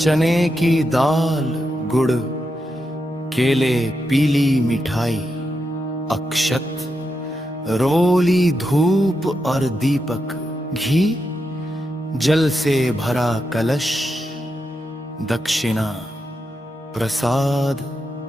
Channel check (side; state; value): both; normal; correlation 0.85